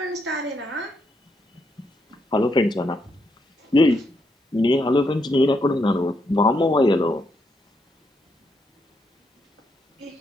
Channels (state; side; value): normal; both; correlation 0.78